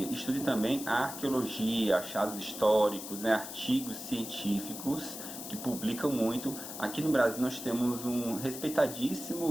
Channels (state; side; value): noise; left; hiss, 9 dB below the sound